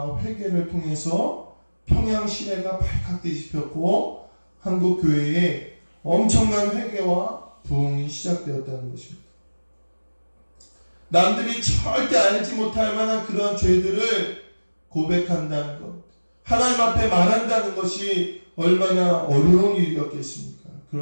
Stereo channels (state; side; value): inverted; both; correlation -1.00